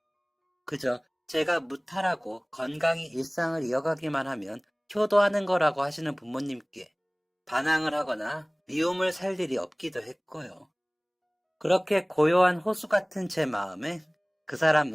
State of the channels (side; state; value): both; identical; correlation 1.00